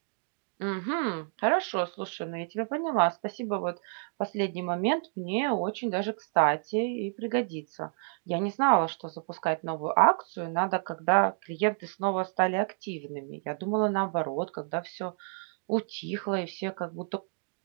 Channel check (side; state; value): left; silent; 58 dB below the other